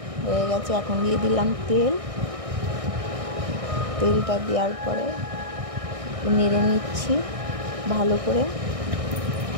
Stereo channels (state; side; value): late; left; 1.6 ms